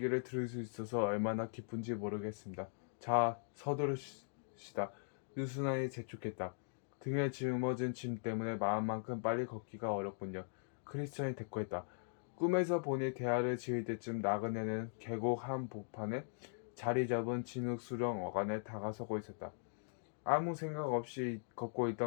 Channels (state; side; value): silent; right; digital silence